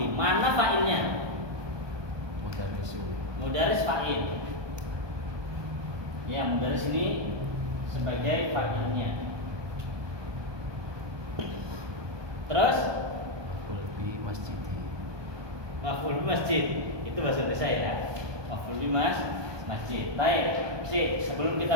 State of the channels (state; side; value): late; left; 1.2 ms